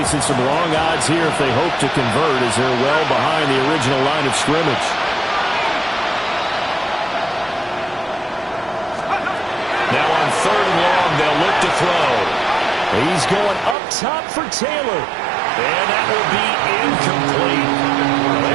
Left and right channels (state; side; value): drops out; left; at 13.8 s